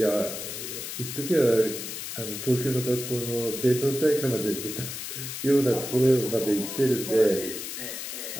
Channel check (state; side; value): noise; left; hiss, 7 dB below the sound